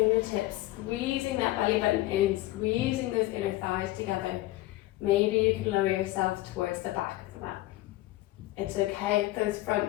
squeezing that belly button in, squeezing those inner thighs together. Maybe you can lower yourself towards the back of the mat. It's okay if those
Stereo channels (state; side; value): quieter; right; 17.2 dB